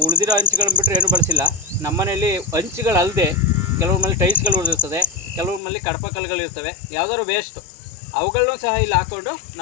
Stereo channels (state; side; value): drops out; right; at 5.6 s